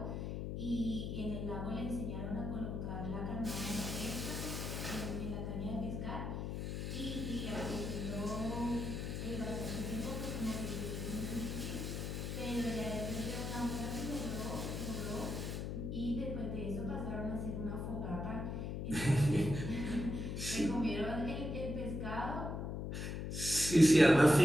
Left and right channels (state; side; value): noise; left; hum, 3 dB below the sound